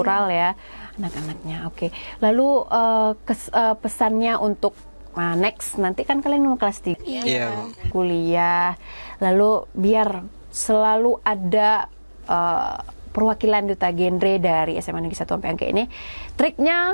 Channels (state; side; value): inverted; both; correlation -1.00